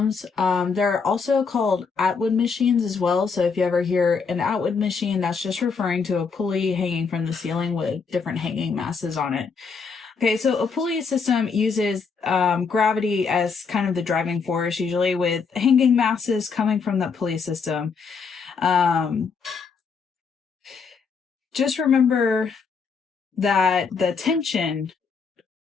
They're also called Atwood machines as well. So if you ever hear an Atwood machine, that's just referring to a pulley hanging from the ceiling with different hanging masses on it. Okay, so a pulley system uses gravity as kind of the driving force, usually with hanging masses coming from that pulley system. Just remember that the tension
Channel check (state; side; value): quieter; right; 5.3 dB